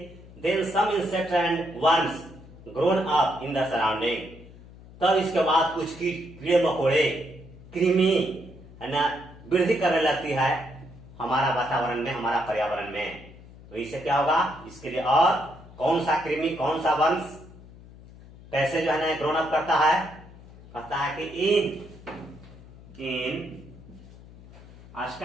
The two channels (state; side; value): noise; left; hum, 20 dB below the sound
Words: then some insect and worms grown up in the surrounding, तब इसके बाद कुछ कीड़े मकोड़े, कृमि है ना वृद्धि करने लगती है हमारा वातावरण में, हमारा पर्यावरण में। तो इससे क्या होगा, इसके लिए और कौन सा कृमि, कौन सा वंश कैसे जो है ना ग्रोन अप करता है, कहता है कि in